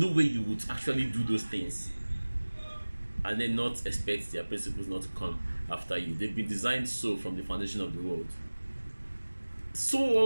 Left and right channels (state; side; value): inverted; both; correlation -1.00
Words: way you would actually do those things and then not expect their principles not to come after you. They've been designed so from the foundation of the world. So